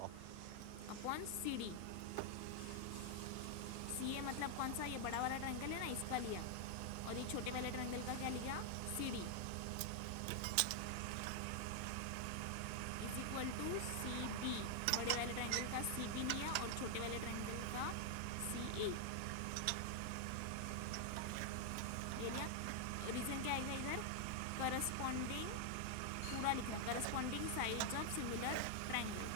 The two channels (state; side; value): different; both; correlation 0.00